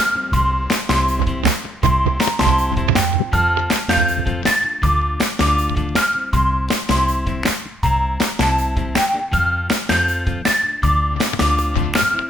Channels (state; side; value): normal; both; correlation 0.78